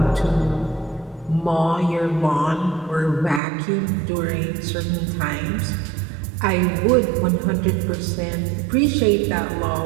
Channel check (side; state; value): left; drops out; at 3.4 s